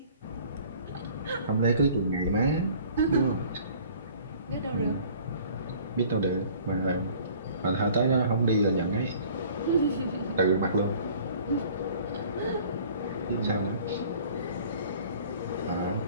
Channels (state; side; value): inverted; both; correlation -0.51